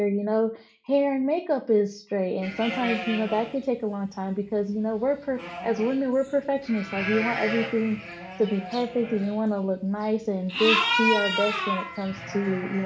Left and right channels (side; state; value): both; identical; correlation 1.00